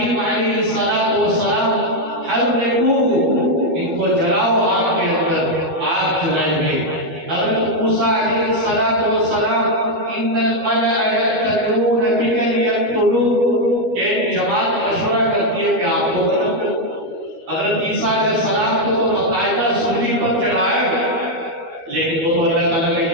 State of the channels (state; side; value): late; left; 12 ms